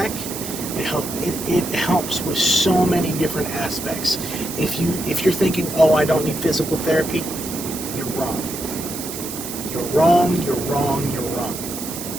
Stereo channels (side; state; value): right; noise; hiss, 8 dB below the sound